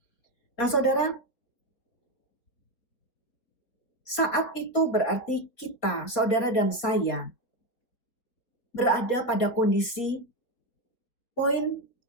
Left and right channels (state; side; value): late; right; 4.2 ms